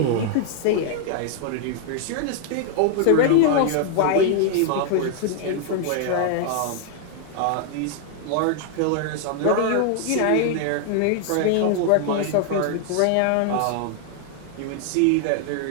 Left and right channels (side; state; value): both; different; correlation 0.00